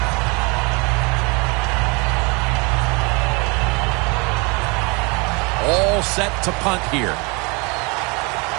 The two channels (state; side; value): quieter; left; 29.6 dB